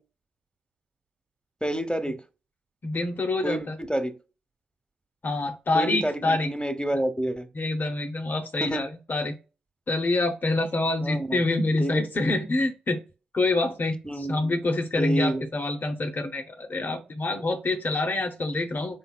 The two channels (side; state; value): both; normal; correlation 0.81